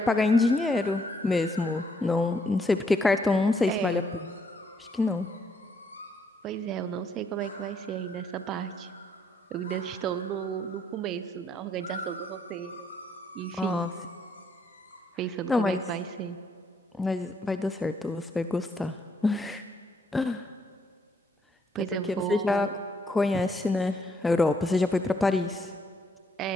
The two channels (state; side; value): normal; both; correlation 0.72